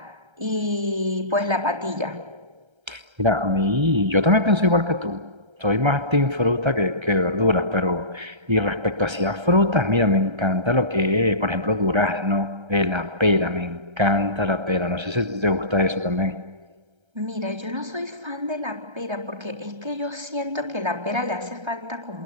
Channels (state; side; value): late; left; 1.3 ms